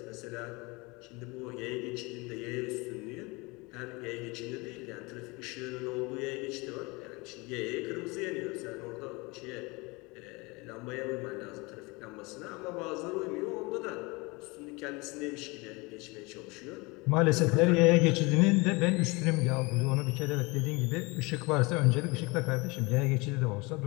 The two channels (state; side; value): quieter; right; 25.8 dB